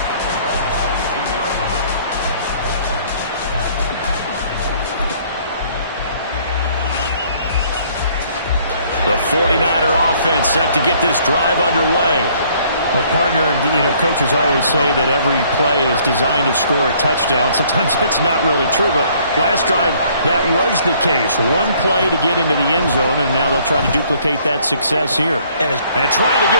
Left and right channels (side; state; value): both; inverted; correlation -0.61